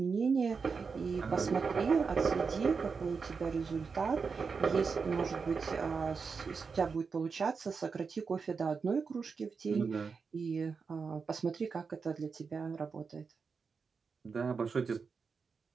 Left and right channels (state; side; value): quieter; left; 5.2 dB